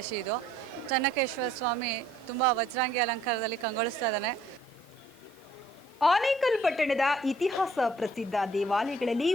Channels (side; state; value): both; normal; correlation 0.60